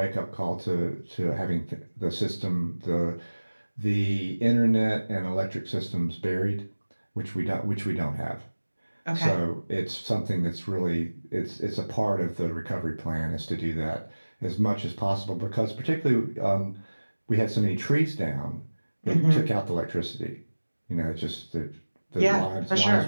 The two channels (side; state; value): both; inverted; correlation -1.00